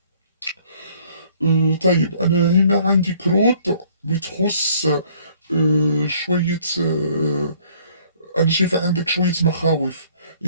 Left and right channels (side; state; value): both; inverted; correlation -0.60